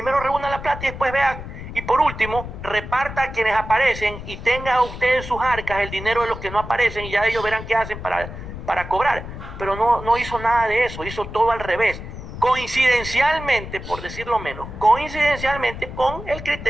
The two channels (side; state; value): left; noise; rumble, 10 dB below the sound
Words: reúna la plata y después vea, y por último, reparta a quienes aparecen y tenga usted en sus arcas el dinero de los que no aparecen y ya ellos verán qué hacen para cobrar. Pero no hizo nada de eso, hizo todo al revés. Coincidencialmente, por decirlo menos, coincidencialmente con el